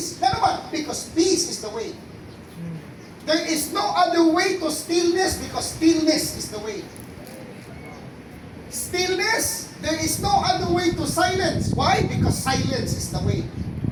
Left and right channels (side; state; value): both; identical; correlation 1.00